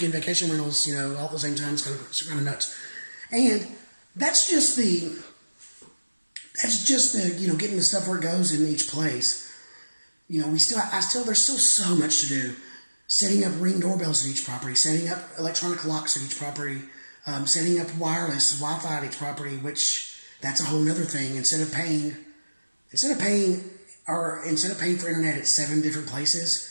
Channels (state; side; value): inverted; both; correlation -1.00